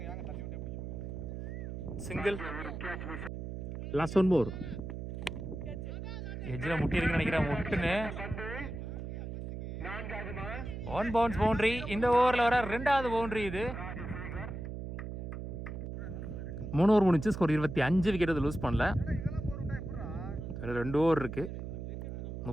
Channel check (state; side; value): noise; right; hum, 7 dB below the sound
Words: சிங்கிள் லாஸ்ட் ஒன் மோர் எஜ்ஜில் முட்டி இருக்குன்னு நினைக்கிறேன் முட்டுன்னு 1 பவுன்ஸ் பவுண்டரி இந்த ஓவரில் வர 2வது பவுண்டரி இது 3 ஓவர் முடிச்சு ஸ்கோர் 25 விக்கெட் அது லூஸ் பண்ணல 2 ஓவர் இருக்கு